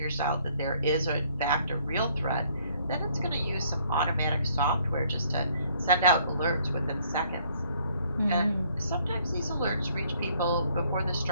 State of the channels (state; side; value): inverted; both; correlation -0.63